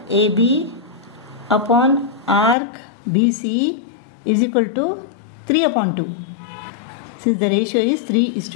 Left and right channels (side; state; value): right; drops out; at 2.6 s